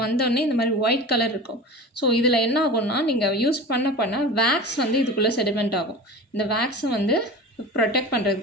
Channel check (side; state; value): both; normal; correlation 0.33